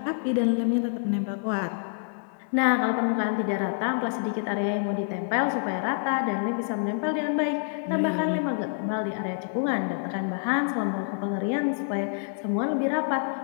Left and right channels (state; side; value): silent; right; 60 dB below the other